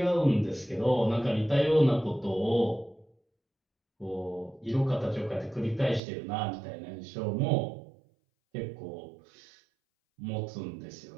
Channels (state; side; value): drops out; left; at 6.0 s